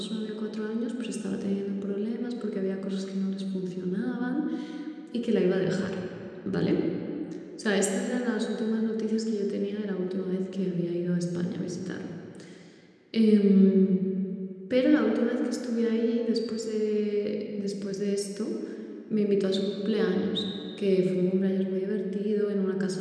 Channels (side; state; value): both; identical; correlation 1.00